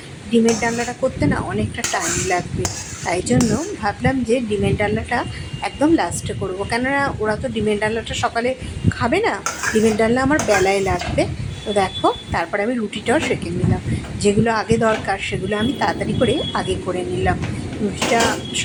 ডিমের ডালনাটা করতে না অনেকটা টাইম লাগবে, তাই জন্য ভাবলাম যে ডিমের ডালনাটা একদম লাস্টে করবো, কেননা ওরা তো ডিমের ডালনাটা সকালে খাবে না, ডিমের ডালনা আমার বেলায় লাগবে। তো দেখো তারপরে আমি রুটিটাও সেঁকে নিলাম, যেগুলো আগে দরকার সেগুলো আমি তাড়াতাড়ি করে আগে করে নিলাম। রুটিটা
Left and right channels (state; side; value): identical; both; correlation 1.00